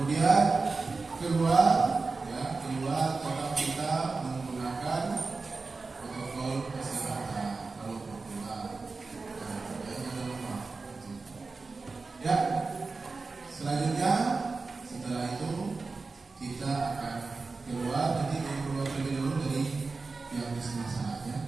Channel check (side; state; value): left; quieter; 4.0 dB